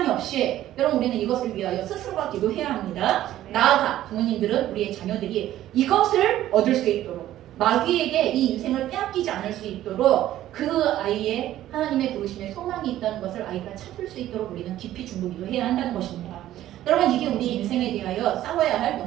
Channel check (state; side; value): quieter; left; 13.4 dB